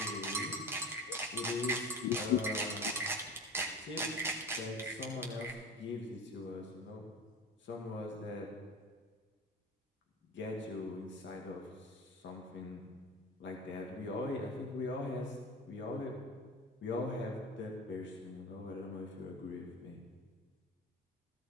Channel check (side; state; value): both; normal; correlation 0.31